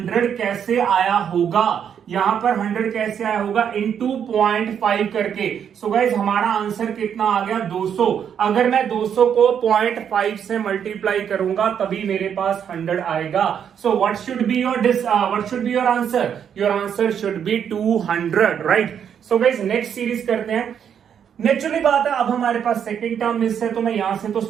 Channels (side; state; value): left; quieter; 8.3 dB